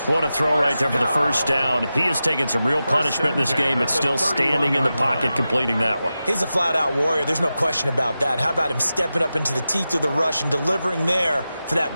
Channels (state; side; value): inverted; both; correlation -0.93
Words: What a throw right there for the first down. He has taken some real punishment in this game. It's still standing in the pocket, completing that one. He's a flat-out warrior. There's no question about that. How about him stepping up into the teeth of the rush and delivering there for